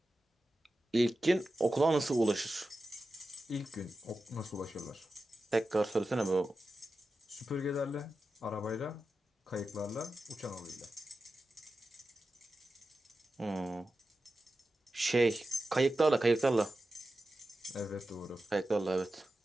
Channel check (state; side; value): normal; both; correlation 0.92